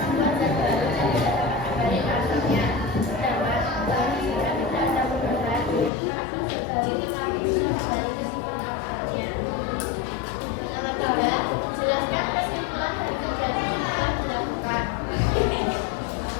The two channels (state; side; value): drops out; right; at 5.9 s